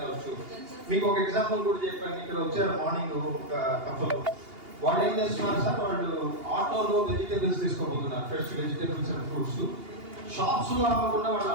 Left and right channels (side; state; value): left; late; 2.8 ms